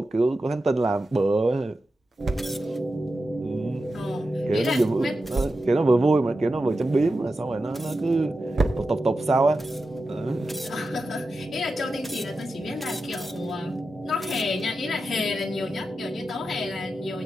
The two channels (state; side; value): normal; both; correlation 0.91